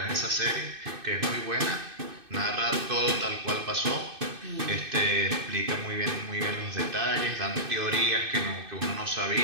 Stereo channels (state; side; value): late; left; 2.6 ms